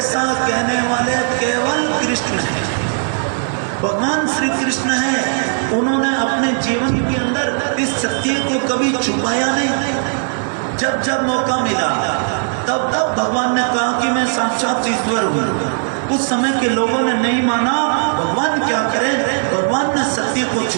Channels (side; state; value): left; silent; digital silence